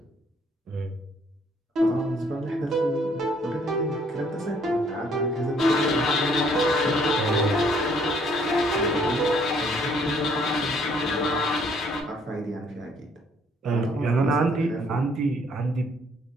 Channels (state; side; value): normal; both; correlation 0.63